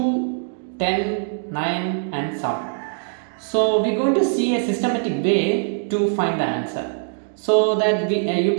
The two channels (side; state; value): left; silent; digital silence